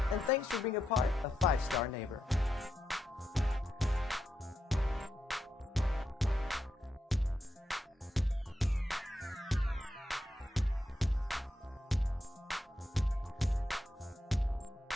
and thanks for being a part of 5 Star Neighbor.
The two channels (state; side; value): normal; both; correlation 0.85